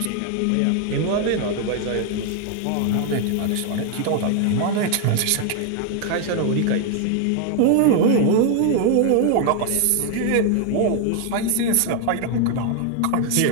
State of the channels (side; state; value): both; different; correlation 0.00